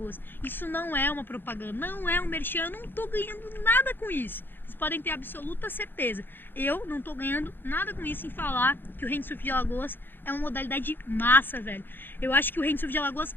Isso não é uma propaganda, não é um merchan, eu não tô ganhando nada com isso. Vocês podem ter absoluta certeza. Eu não tô ganhando nada com isso em falar que o Windsurf de Alagoas é uma modalidade massa, velho. Eu acho que o Windsurf de Alagoas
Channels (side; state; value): right; late; 0.098 ms